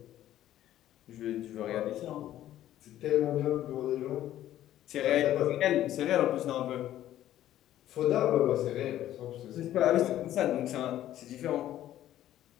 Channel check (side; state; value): right; quieter; 12.8 dB